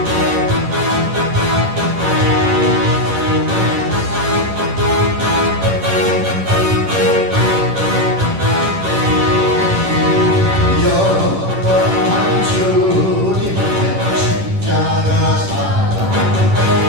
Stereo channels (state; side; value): late; left; 10 ms